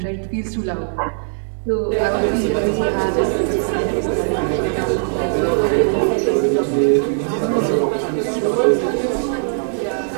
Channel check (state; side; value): silent; left; digital silence